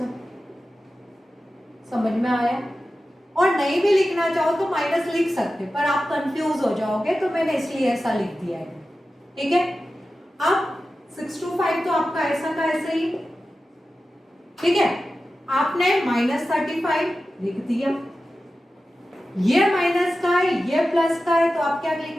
समझ में आया। और नहीं भी लिखना चाहो तो माइनस लिख सकते, पर आप कंफ्यूज हो जाओगे तो मैंने इसलिए ऐसा लिख दिया है। ठीक है, अब 625 तो आपका ऐसा का ऐसे ही, ठीक है, आपने -35 लिख दिया, ये माइनस का है ये प्लस का है तो आप क्या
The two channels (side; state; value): both; normal; correlation 0.94